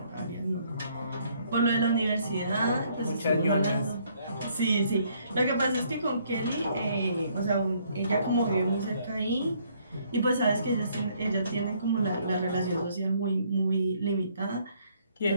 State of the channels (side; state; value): both; inverted; correlation -0.66